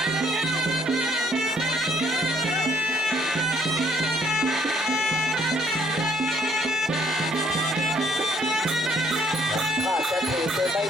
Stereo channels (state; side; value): normal; both; correlation 0.66